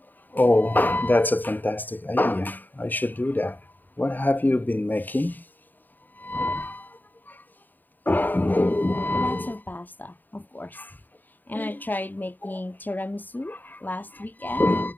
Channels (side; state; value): right; late; 0.089 ms